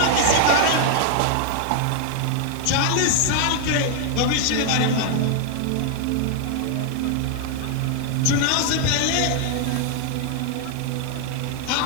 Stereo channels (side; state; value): both; different; correlation 0.00